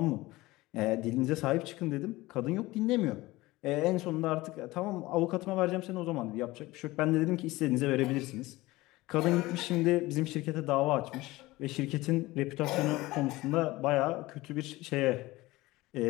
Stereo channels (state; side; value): quieter; right; 19.5 dB